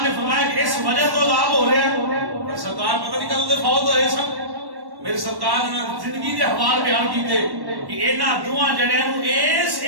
نے فرمایا کہ اس وجہ تو عذاب ہو رہا ہے سرکار پتہ نہیں کدوں فوت ہوئے سن میری سرکار نے زندگی کے حوال بیان کیتے کہ انہاں دوواں جڑیاں نو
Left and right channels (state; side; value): late; left; 1.1 ms